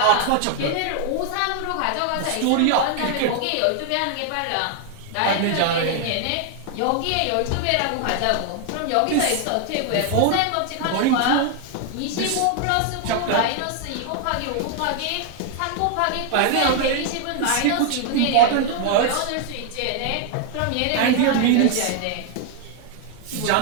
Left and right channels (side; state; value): both; different; correlation 0.00